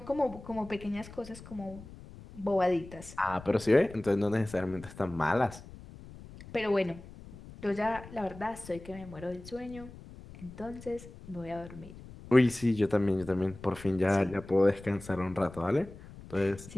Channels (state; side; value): noise; left; rumble, 16 dB below the sound